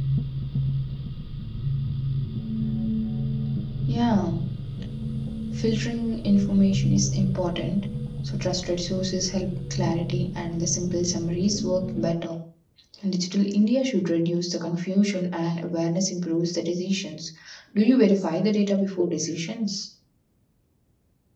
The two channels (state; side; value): identical; both; correlation 1.00